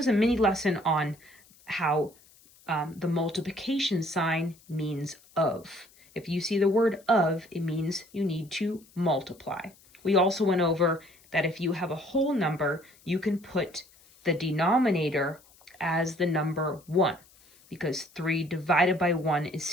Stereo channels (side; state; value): left; noise; hiss, 28 dB below the sound